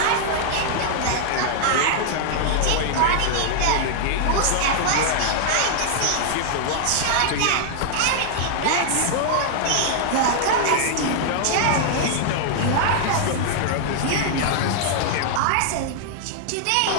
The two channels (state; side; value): different; both; correlation -0.01